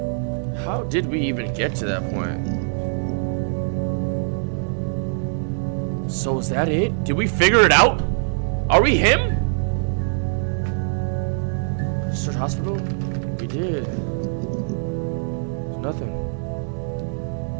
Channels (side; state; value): left; silent; 63 dB below the other